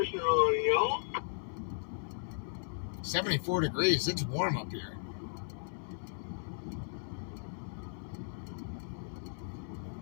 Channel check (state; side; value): silent; right; 54 dB below the other